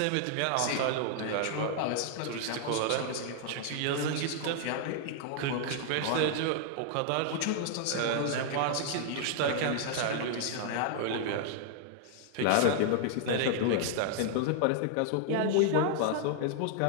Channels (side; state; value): both; different; correlation -0.01